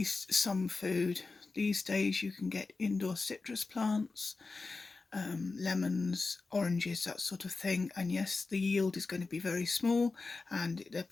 some food. These days you can get indoor citrus plants, lemons, oranges, that sort of thing. And yes, the yield is going to be very small and they're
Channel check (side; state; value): right; quieter; 3.9 dB